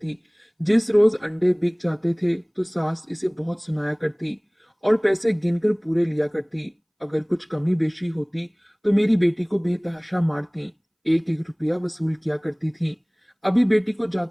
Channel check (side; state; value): both; identical; correlation 1.00